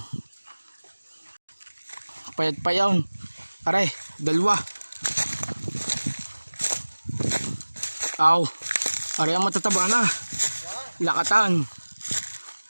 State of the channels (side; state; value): both; inverted; correlation -1.00